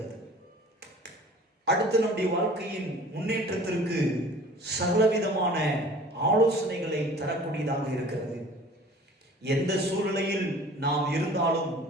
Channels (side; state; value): both; normal; correlation 0.46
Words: அடுத்து நம்முடைய வாழ்க்கையின் முன்னேற்றத்திற்கு சகலவிதமான ஆலோசனைகளை தரக்கூடியதாக இருக்கிறது. எந்த சூழ்நிலையில் நாம் இருந்தாலும்